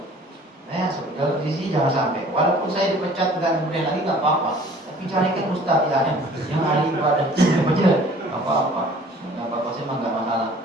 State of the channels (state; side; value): normal; both; correlation 0.51